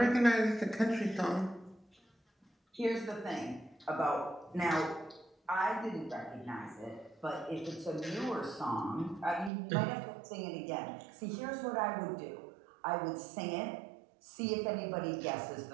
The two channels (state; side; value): drops out; left; at 9.5 s